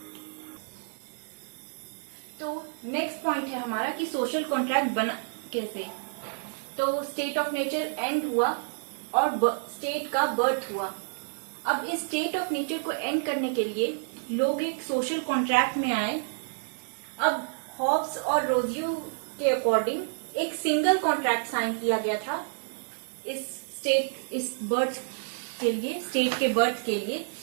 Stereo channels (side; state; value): left; silent; digital silence